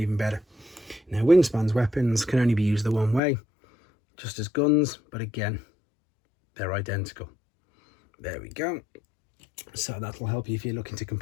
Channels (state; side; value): drops out; right; at 3.2 s